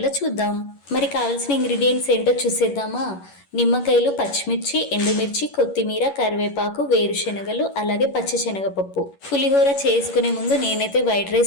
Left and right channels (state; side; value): late; right; 11 ms